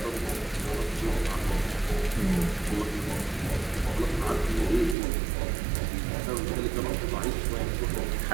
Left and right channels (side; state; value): left; drops out; at 5.0 s